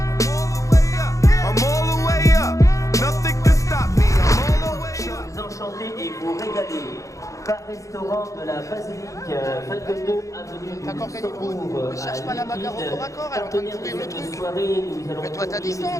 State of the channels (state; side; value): late; right; 0.15 ms